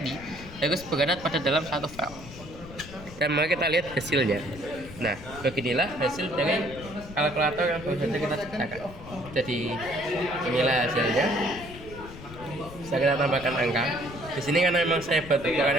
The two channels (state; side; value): noise; left; rumble, 15 dB below the sound